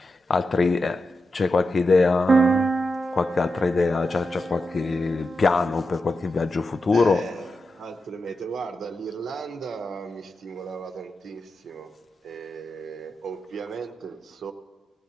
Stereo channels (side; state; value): both; normal; correlation 0.89